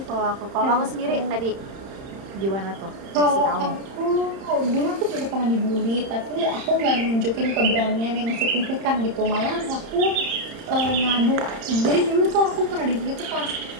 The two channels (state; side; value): late; left; 31 ms